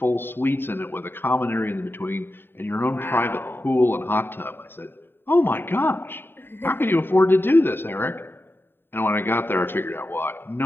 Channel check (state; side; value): late; right; 0.10 ms